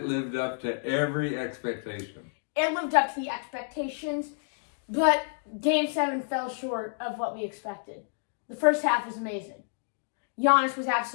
lived up to every expectation. It lived up to the expectations, but Game 7 fell short of what we expected. The first half was amazing. Giannis was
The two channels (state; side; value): silent; right; digital silence